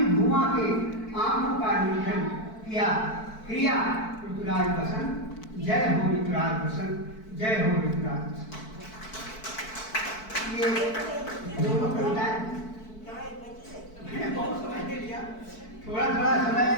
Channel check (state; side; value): late; right; 4.6 ms